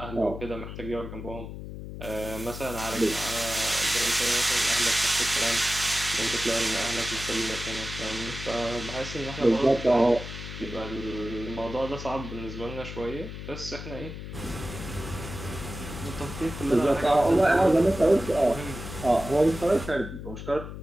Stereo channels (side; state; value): left; noise; hum, 10 dB below the sound